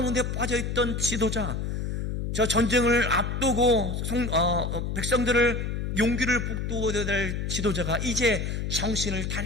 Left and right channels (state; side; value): noise; left; hum, 2 dB below the sound